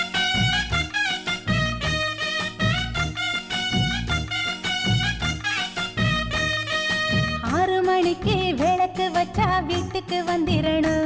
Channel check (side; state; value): both; identical; correlation 1.00